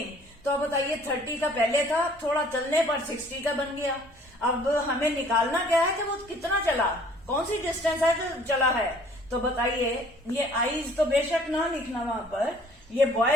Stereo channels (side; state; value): both; normal; correlation 0.56